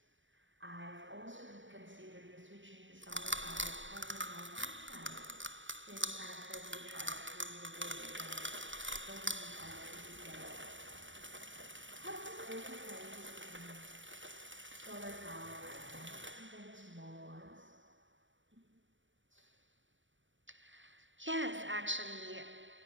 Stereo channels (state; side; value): late; left; 0.56 ms